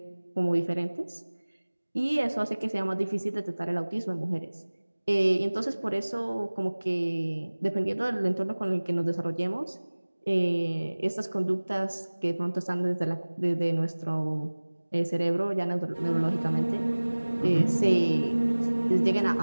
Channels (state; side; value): inverted; both; correlation -1.00